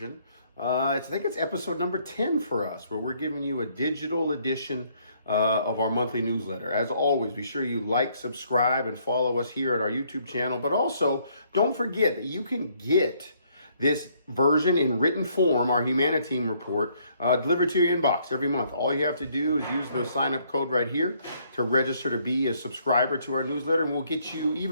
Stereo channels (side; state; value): both; inverted; correlation -0.67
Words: I think it's episode number 10 for us, where we're giving you a digital edition of our monthly newsletter. As always, be sure you like, subscribe, and follow us here at our YouTube channel. But also, don't forget that you can get this version in written form, our HuMANiTEAM report, delivered to your inbox every month. All you have to do is use the sign-up code right here to register to be a subscriber to our newsletter, and we'll get you